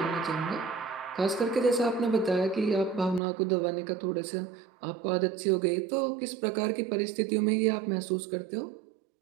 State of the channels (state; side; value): drops out; left; at 3.2 s